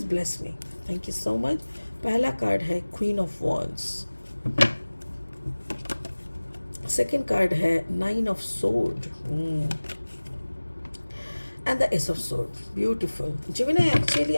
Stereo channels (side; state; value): both; inverted; correlation -1.00